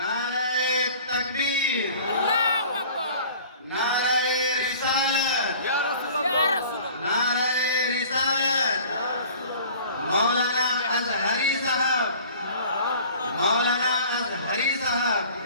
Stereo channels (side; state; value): both; inverted; correlation -0.46